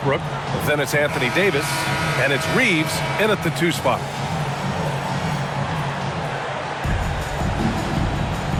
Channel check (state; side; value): identical; both; correlation 1.00